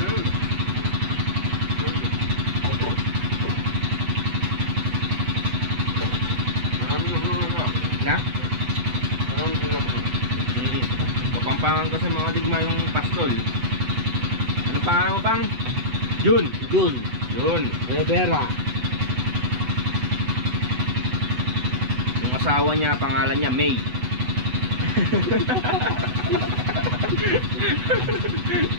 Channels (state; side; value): late; left; 8.0 ms